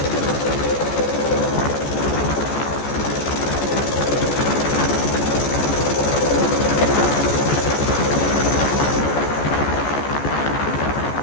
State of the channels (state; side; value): late; right; 14 ms